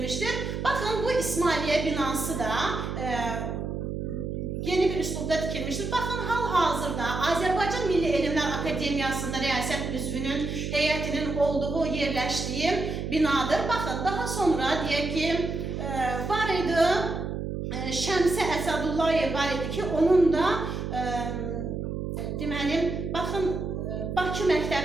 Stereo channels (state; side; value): noise; right; hum, 4 dB below the sound